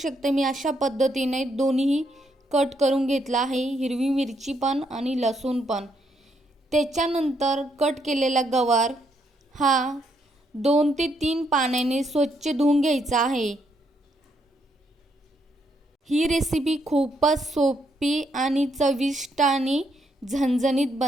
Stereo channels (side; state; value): both; normal; correlation 0.75